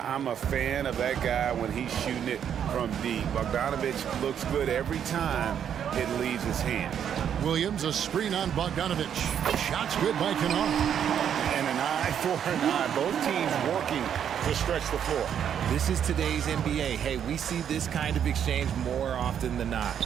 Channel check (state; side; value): quieter; left; 8.8 dB